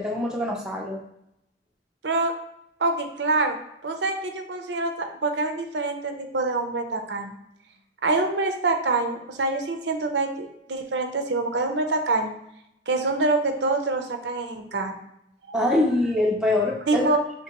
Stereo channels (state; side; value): normal; both; correlation 0.01